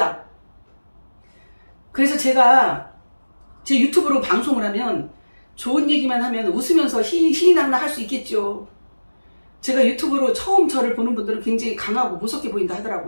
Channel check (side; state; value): both; inverted; correlation -1.00